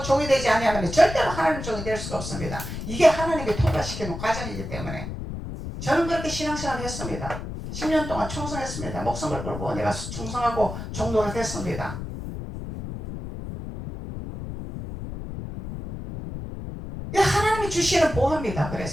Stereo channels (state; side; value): noise; left; rumble, 8 dB below the sound